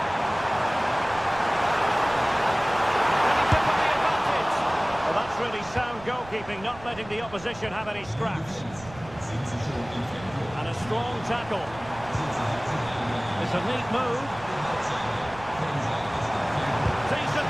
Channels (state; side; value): noise; right; rumble, 18 dB below the sound